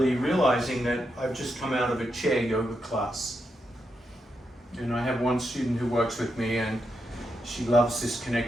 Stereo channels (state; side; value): normal; both; correlation 0.84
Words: realizing that I've just come out of a chair yoga class. And I have one student who works with me, and she loves this